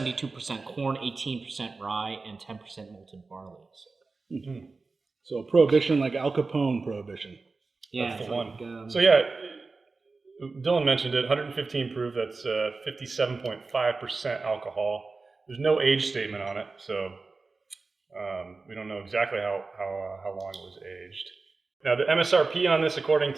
corn, 18% rye, and 10% malted barley. So. Mm-hmm. So Prohibition, like Al Capone Prohibition. Yeah, that's the one. So yeah, Dylan mentioned it. 115 proof. That's 57.5% alcohol. There's no age statement on it, so we don't know exactly how long it was aged. Now the MSRP on this, according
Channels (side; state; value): left; quieter; 3.9 dB